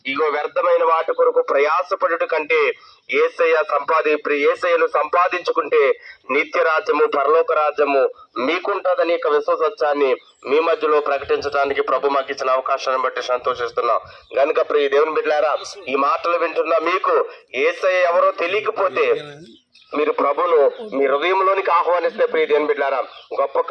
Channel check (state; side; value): identical; both; correlation 1.00